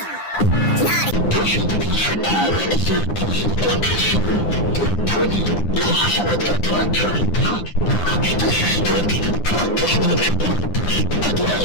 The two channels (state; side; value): late; right; 9.8 ms